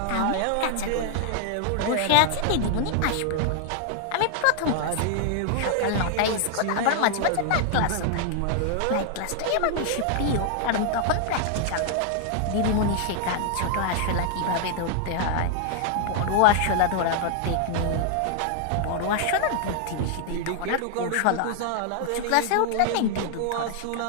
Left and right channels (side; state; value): both; different; correlation 0.00